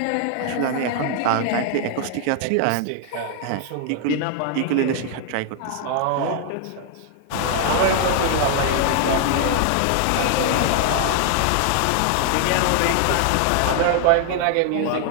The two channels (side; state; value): both; different; correlation 0.00